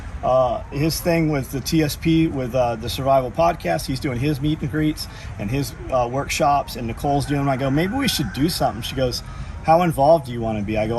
thing with the TSP, with the Survival Podcast. He's doing his meet and greets and his workshops, and Nicole's doing them. I go, maybe we should do something. She goes, how involved do you want to be? I go,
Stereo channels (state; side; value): identical; both; correlation 1.00